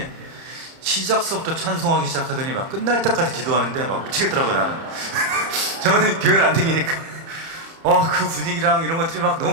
시작서부터 찬송하기 시작하더니 막 끝날 때까지 기도하는데 막 미치겠더라고요, 나는. 저는 교회를 안 다니니까 그 분위기랑 이런 것들이 막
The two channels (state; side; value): late; left; 30 ms